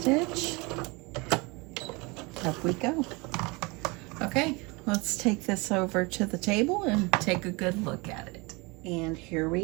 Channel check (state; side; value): quieter; left; 26.6 dB